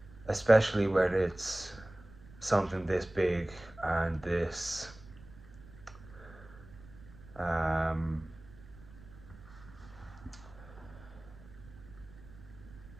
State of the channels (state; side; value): noise; right; rumble, 19 dB below the sound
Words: especially when it's something this big and this